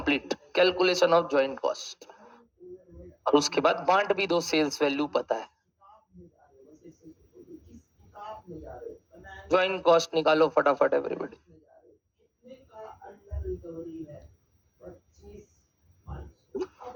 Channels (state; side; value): identical; both; correlation 1.00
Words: calculation of joint cost. और उसके बाद बांट भी दो, सेल्स वैल्यू पता है। ज्वाइंट कॉस्ट निकालो फटाफट एवरीबॉडी। अब